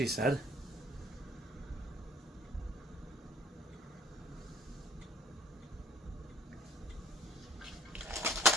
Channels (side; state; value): both; normal; correlation 0.54